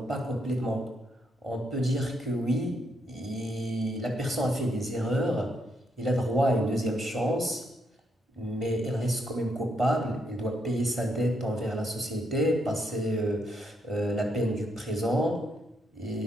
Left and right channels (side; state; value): both; normal; correlation 0.77